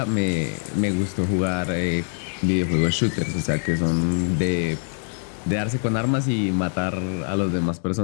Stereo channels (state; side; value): silent; right; digital silence